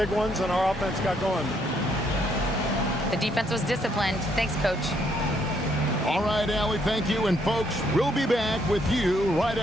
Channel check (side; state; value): both; normal; correlation 0.71